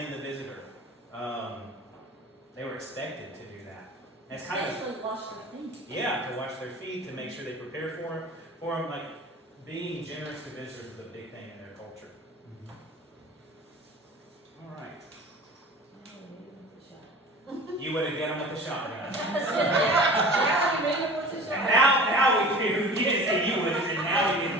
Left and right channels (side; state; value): both; normal; correlation 0.40